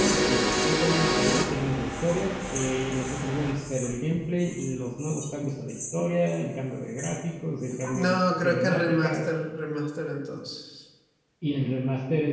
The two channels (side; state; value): both; identical; correlation 1.00